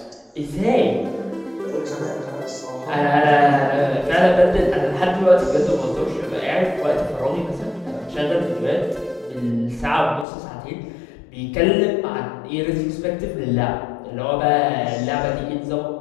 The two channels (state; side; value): drops out; right; at 10.2 s